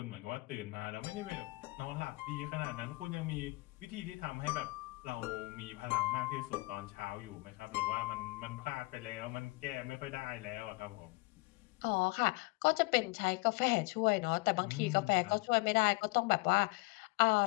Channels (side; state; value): right; quieter; 24.7 dB